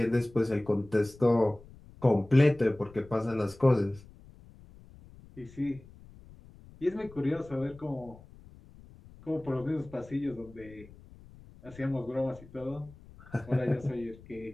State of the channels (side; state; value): left; noise; rumble, 21 dB below the sound